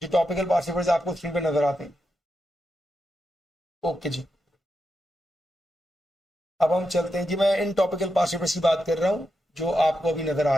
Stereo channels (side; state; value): both; normal; correlation 0.86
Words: जो टॉपिकल पास्ट पेपर्स आपको स्क्रीन पर नजर आते हैं। ओके जी, अब हम चलते हैं जी। मैं इन टॉपिकल पास्ट पेपर्स की बात कर रहा हूं जो आपको अभी नजर आ